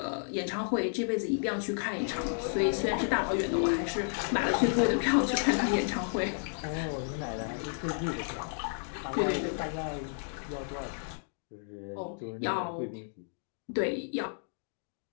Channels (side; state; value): right; silent; digital silence